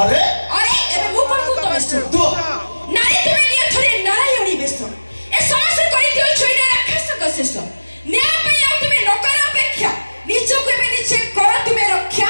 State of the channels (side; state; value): both; inverted; correlation -1.00